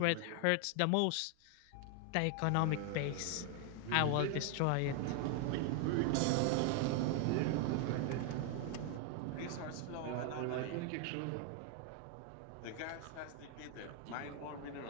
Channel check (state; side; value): different; both; correlation 0.00